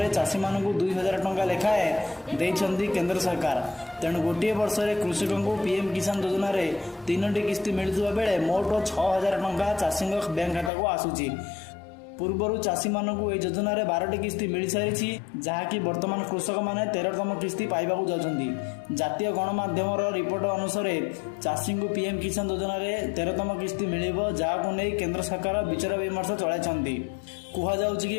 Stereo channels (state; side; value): drops out; right; at 10.7 s